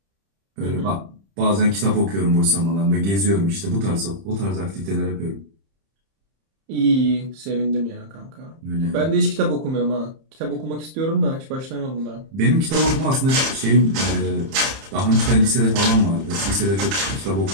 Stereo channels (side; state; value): left; late; 30 ms